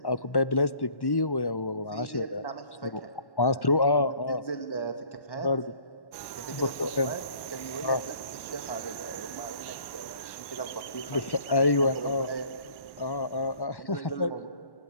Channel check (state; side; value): late; right; 1.1 ms